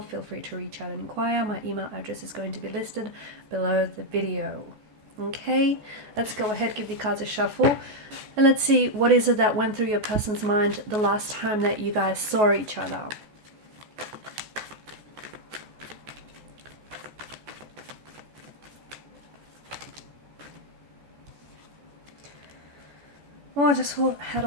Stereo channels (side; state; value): left; late; 14 ms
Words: feel free to reach out and inquire. My email address is going to be listed below the video. Okay, let's go ahead, give the cards a shuffle, and let's see what is it that went through your person's mind the last time that you guys saw each other. Oh, I just had